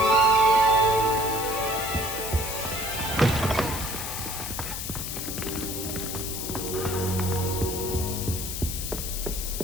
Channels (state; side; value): noise; left; hiss, 5 dB below the sound